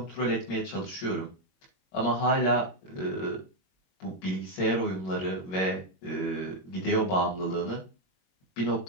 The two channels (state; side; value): late; right; 21 ms